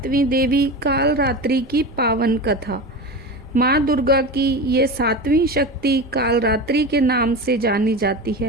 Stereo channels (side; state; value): right; noise; rumble, 24 dB below the sound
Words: देवी कालरात्रि की पावन कथा। माँ दुर्गा की ये 7वीं शक्ति कालरात्रि के नाम से जानी जाती